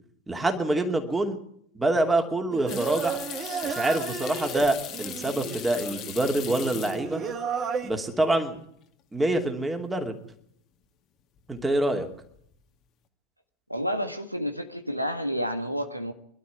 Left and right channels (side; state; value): both; normal; correlation 0.65